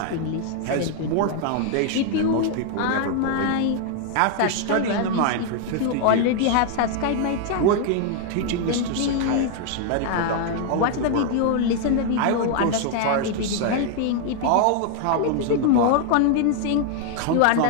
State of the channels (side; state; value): both; different; correlation 0.00